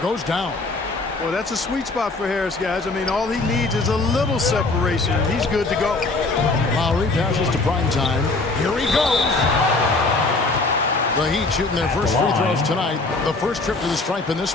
down. Well, that's a sweet spot for Harris, guys. I mean, all he needs is a little separation. He's good to go. Lowry passes to prime time. Here he goes. The Heat shooting their first free throws tonight. The first trip to the stripe in this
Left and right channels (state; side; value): quieter; right; 3.4 dB